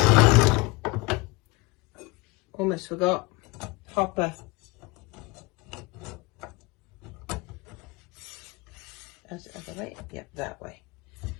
Almost forgot. Hopper. That's the other way? Yep, that way.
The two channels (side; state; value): right; quieter; 24.4 dB